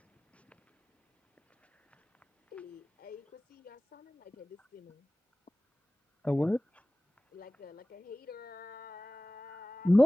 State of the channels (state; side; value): normal; both; correlation 0.97